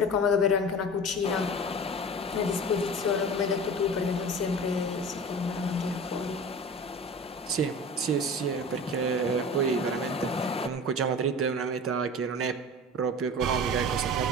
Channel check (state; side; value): normal; both; correlation 0.36